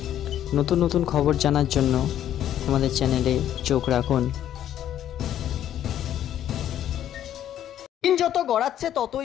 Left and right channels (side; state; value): right; quieter; 11.2 dB